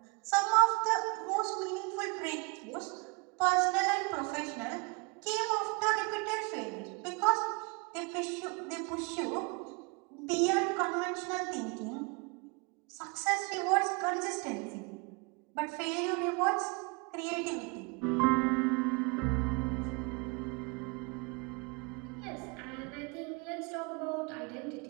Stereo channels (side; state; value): left; quieter; 30.9 dB